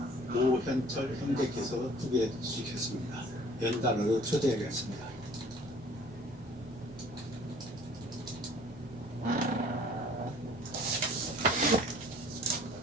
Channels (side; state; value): both; normal; correlation 0.52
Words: 오현철 형제께서 소개해 주시겠습니다. 연단으로 초대하겠습니다.